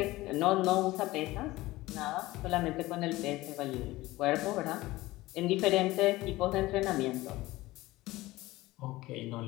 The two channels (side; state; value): right; quieter; 18.7 dB